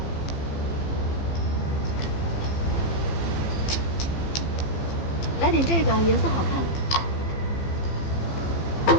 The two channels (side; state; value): right; late; 15 ms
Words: 来点这个，颜色好看。